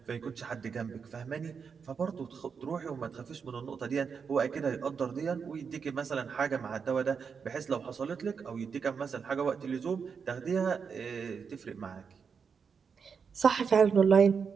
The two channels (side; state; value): left; quieter; 6.1 dB